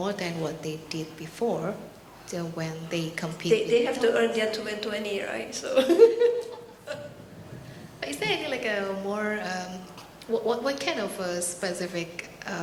than what they did before. So when they compete, They have to earn their 2020, right? So. But is there any like a more what kind of specific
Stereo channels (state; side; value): identical; both; correlation 1.00